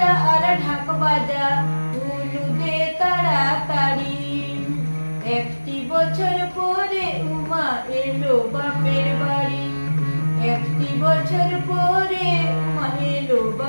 আর ঢাক বাজা, উলু দে তাড়াতাড়ি। একটি বছর পরে উমা এলো বাপের বাড়ি। একটি বছর পরে উমা এলো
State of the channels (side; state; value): both; inverted; correlation -1.00